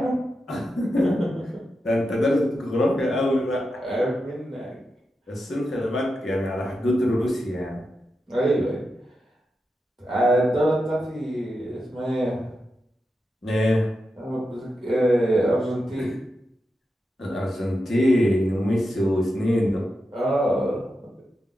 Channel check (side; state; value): both; normal; correlation 0.88